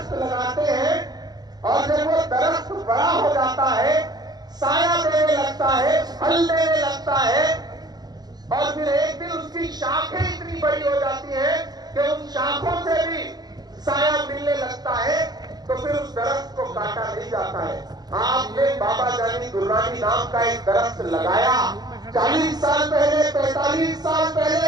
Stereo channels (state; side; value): late; left; 0.20 ms